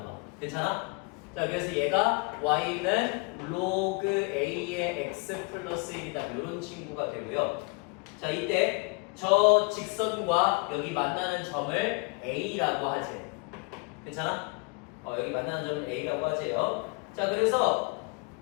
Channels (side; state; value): right; quieter; 31.1 dB